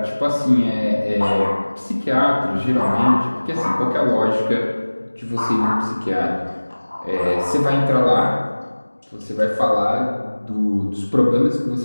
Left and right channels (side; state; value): both; inverted; correlation -1.00